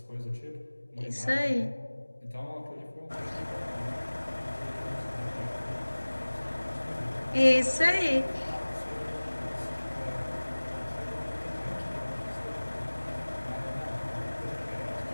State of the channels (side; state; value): both; inverted; correlation -1.00